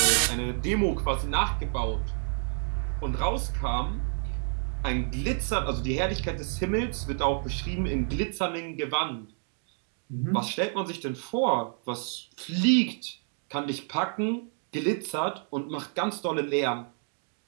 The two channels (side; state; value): left; silent; 59 dB below the other